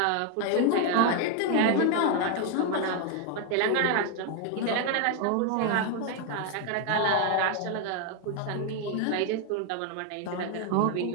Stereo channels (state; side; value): different; both; correlation 0.01